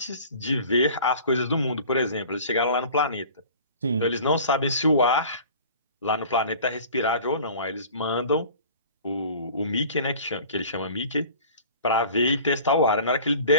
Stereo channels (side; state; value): both; inverted; correlation -0.44